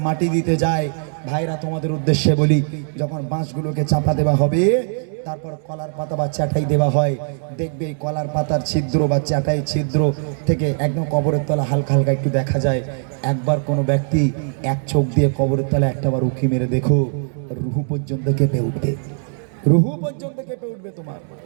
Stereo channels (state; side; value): silent; left; 62 dB below the other